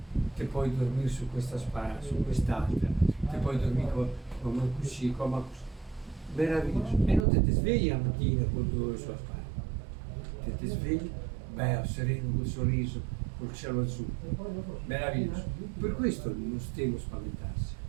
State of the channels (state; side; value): drops out; left; at 7.2 s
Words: Te puoi dormire su questa spalla, su quest'altra, te puoi dormire come così, come così. Meraviglioso. E non te svegli la mattina con 2 ore sulla spalla. Te svegli, bello, sereno, col sorriso, col cielo azzurro. Meraviglioso. Per questo non stiamo a spaventarsi.